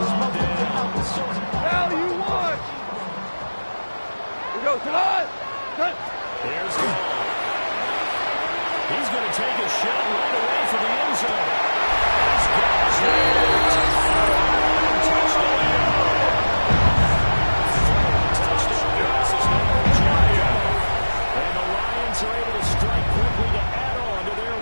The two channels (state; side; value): inverted; both; correlation -1.00